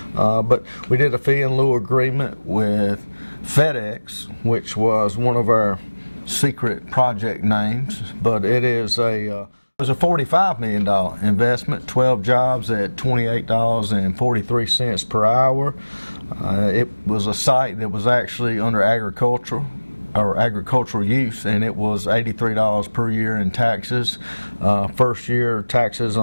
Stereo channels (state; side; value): inverted; both; correlation -1.00